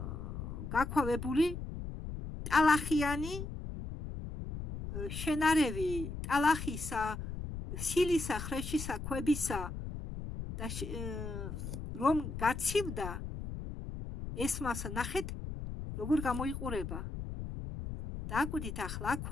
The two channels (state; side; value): noise; left; rumble, 7 dB below the sound